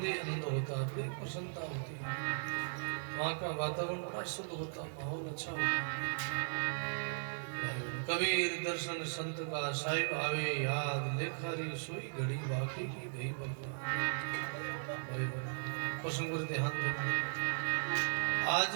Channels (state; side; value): silent; left; digital silence